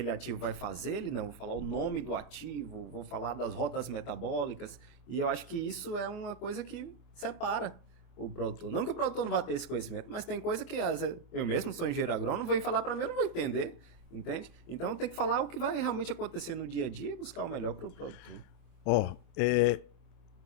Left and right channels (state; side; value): late; right; 24 ms